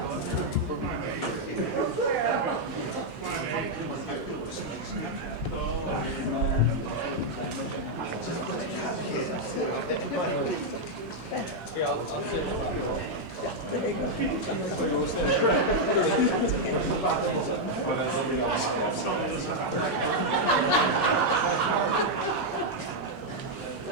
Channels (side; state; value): both; normal; correlation -0.02